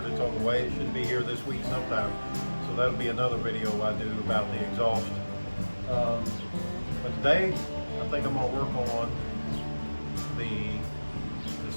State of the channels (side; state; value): both; inverted; correlation -1.00